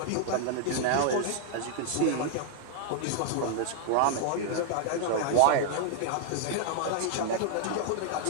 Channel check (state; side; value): different; both; correlation 0.00